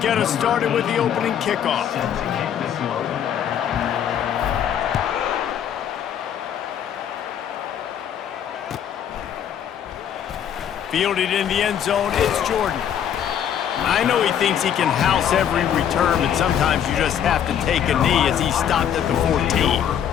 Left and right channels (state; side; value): quieter; right; 9.3 dB